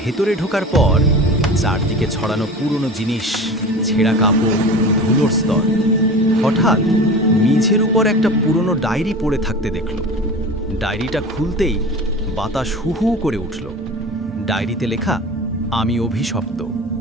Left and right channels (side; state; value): both; normal; correlation 0.34